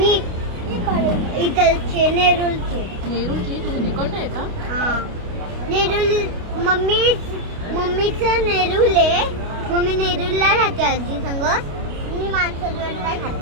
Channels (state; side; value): late; left; 29 ms